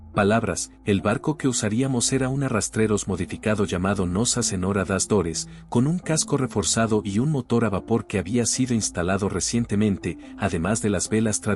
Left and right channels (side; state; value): both; identical; correlation 1.00